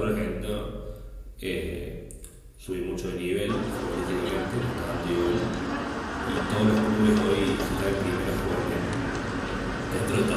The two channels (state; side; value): identical; both; correlation 1.00